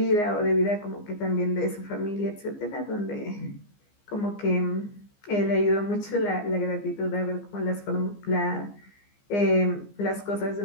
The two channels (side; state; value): right; late; 15 ms